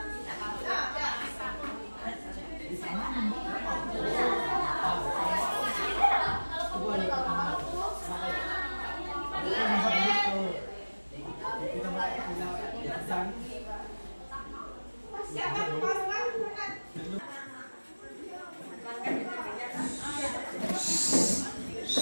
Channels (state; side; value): inverted; both; correlation -1.00